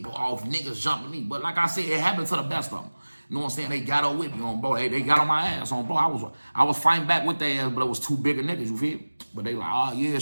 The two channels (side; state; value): both; inverted; correlation -1.00